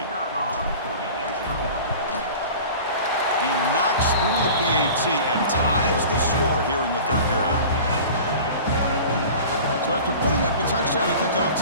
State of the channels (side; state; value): both; inverted; correlation -0.39